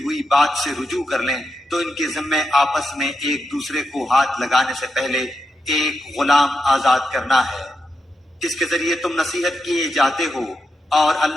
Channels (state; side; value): normal; both; correlation 0.86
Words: ہوئی بات سے رجوع کر لیں تو ان کے ذمے آپس میں ایک دوسرے کو ہاتھ لگانے سے پہلے ایک غلام آزاد کرنا ہے، اس کے ذریعے تم نصیحت کیے جاتے ہو اور